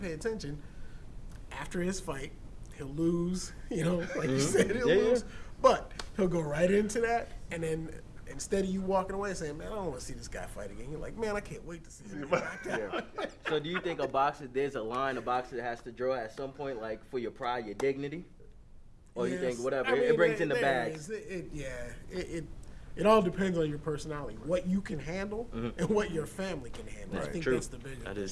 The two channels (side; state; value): both; identical; correlation 1.00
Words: attention, after his fight, he'll lose. You know, like you said, he'll Yeah, yeah. lose. But he'll go right into that, and then instead of you walking away saying, "Man, I don't want to see this guy fight again," you're like, "Man, I can't wait to see him." get knocked out." Yeah. So do you think there's a line a boxer has to draw at some point, like for your pride, your dignity? Or you think Yes. whatever, I mean, it brings in the there bag? is. It all depends on your personality, what you can handle, and what your family can handle. I Right. think True. that's the biggest. That is